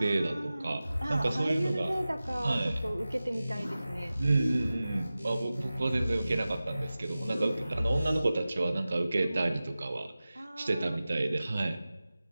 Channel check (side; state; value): both; inverted; correlation -0.96